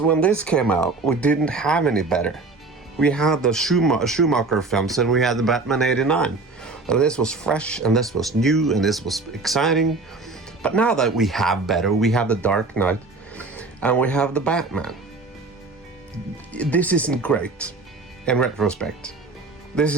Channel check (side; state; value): left; quieter; 3.6 dB